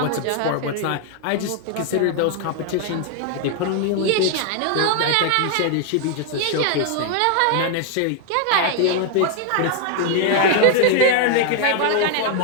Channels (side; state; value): both; different; correlation 0.00